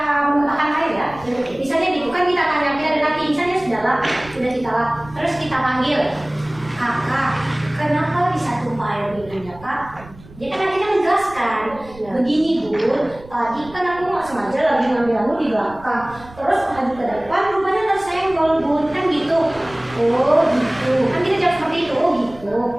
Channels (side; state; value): right; noise; rumble, 20 dB below the sound